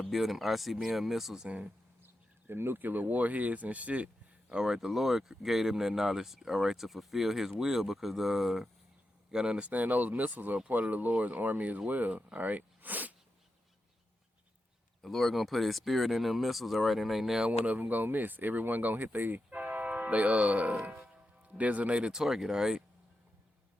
build them ICBM missiles and them nuclear warheads and shit. All right, the Lord gave them that knowledge, all right, to fulfill his will, because you gotta understand those missiles are part of the Lord's army as well, all right? The Lord gonna put his spirit in them missiles, all right, and ain't now one of them gonna miss. Everyone gonna hit they designated target, all right?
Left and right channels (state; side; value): normal; both; correlation 0.88